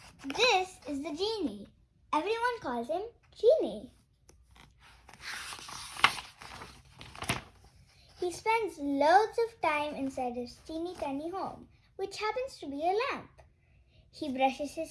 This is the Genie. Everyone calls him Genie. He spends loads of time inside his teeny tiny home, which happens to be a lamp. He brushes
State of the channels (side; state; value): both; identical; correlation 1.00